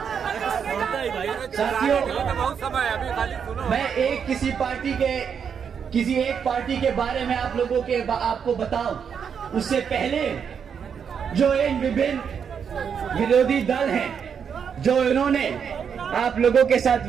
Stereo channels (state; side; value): quieter; left; 7.1 dB